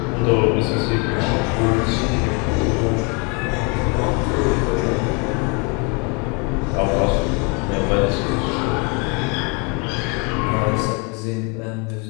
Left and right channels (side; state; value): right; quieter; 31.8 dB